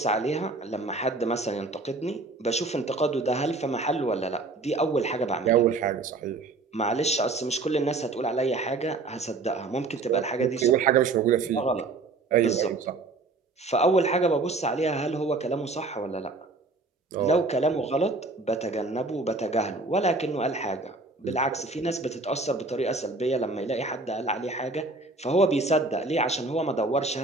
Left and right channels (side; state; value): left; quieter; 3.5 dB